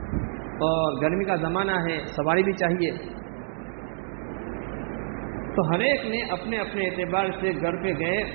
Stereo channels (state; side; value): silent; left; digital silence